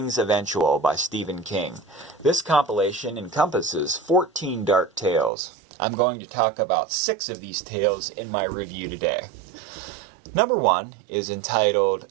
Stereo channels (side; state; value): left; drops out; at 5.3 s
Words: Eventual by Stephen King. This compilation encompasses 14 dark tales. I'm going to talk about 6 of these tales in my review today. Number 1 is entitled